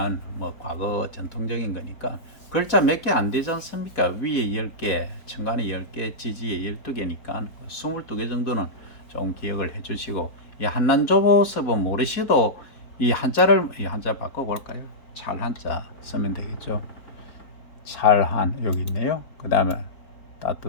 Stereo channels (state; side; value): late; right; 4.2 ms